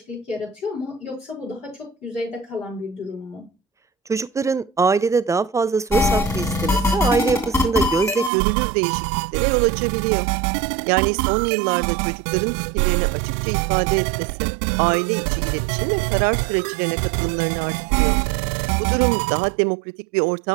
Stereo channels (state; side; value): drops out; left; at 8.3 s